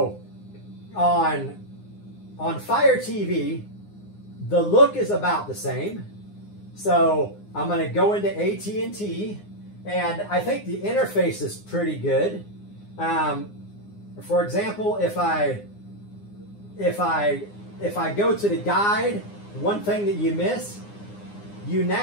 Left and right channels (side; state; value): right; late; 9.7 ms